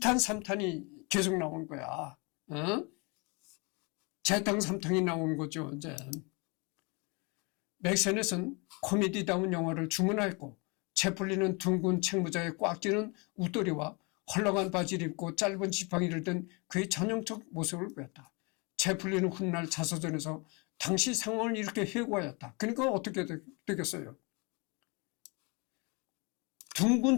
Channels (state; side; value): quieter; right; 30.2 dB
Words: 3탄이 계속 나온 거야. 재탕 3탄이 나온 거죠. 이제 맥 세넷은 코미디다운 영화를 주문하였고 채플린은 둥근 책모자에 꽉 끼는 웃도리와 헐렁한 바지를 입고 짧은 지팡이를 든 그의 전형적 모습을 보였다. 채플린은 훗날 자서전에서 당시 상황을 이렇게 회고하였다. 그러니까 어떻게 되겠어요?